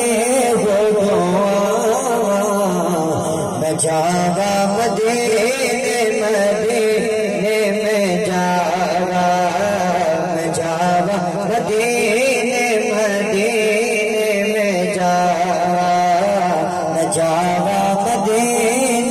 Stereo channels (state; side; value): identical; both; correlation 1.00